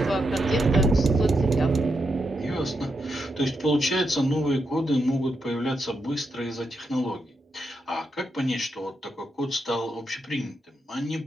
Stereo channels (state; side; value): normal; both; correlation 0.83